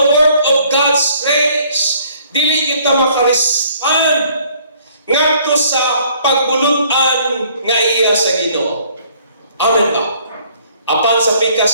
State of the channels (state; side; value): inverted; both; correlation -0.60